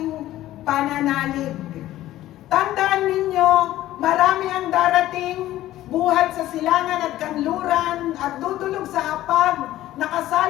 pananalig. Tandaan ninyo, marami ang darating, buhat sa silangan at kanluran at dudulog sa hapag,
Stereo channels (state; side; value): quieter; right; 14.6 dB